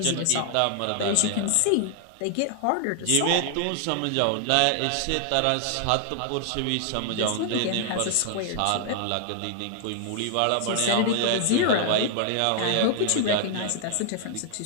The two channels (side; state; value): both; different; correlation 0.00